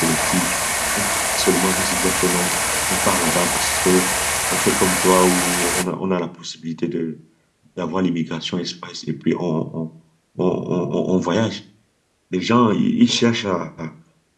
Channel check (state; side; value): identical; both; correlation 1.00